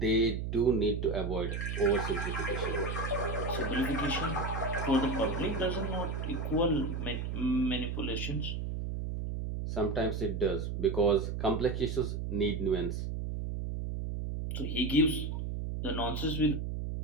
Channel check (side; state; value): right; noise; hum, 3 dB below the sound